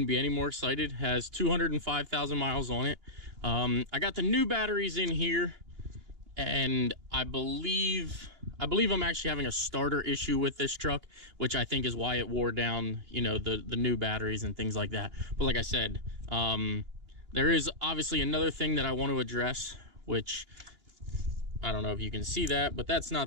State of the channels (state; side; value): late; left; 2.9 ms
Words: be any more excited. Has 205,000 miles on it. I got the new batteries in here, and I believe I'm actually having a starter issue with this truck, which I think is why it wore down, you know, the new batteries and things like that. But like I said, there is obviously another thing that I want to address, which I don't know if you can see that, but that's not